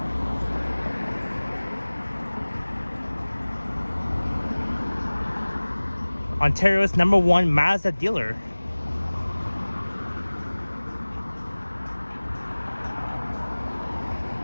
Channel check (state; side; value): inverted; both; correlation -1.00